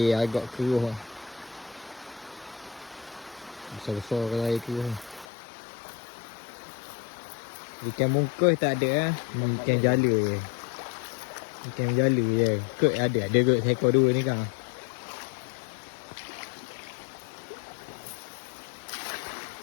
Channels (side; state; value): right; drops out; at 5.2 s